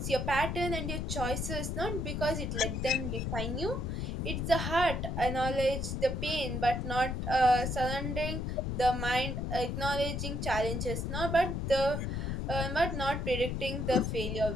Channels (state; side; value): noise; left; rumble, 2 dB below the sound